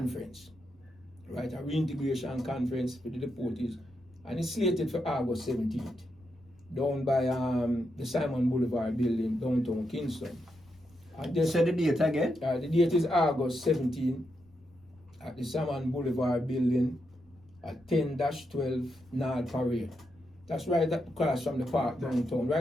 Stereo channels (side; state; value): left; noise; rumble, 29 dB below the sound